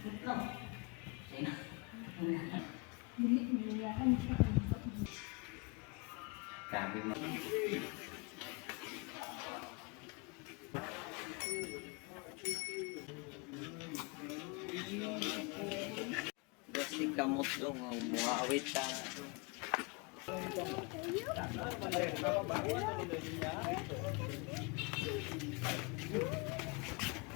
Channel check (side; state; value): right; quieter; 29.0 dB